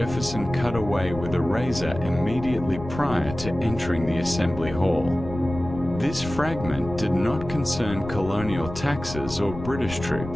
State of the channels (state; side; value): noise; left; rumble, 11 dB below the sound